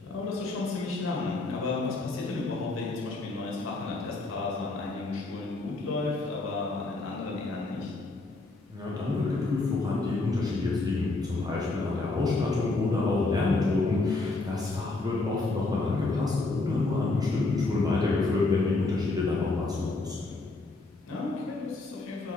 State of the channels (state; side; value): quieter; right; 3.3 dB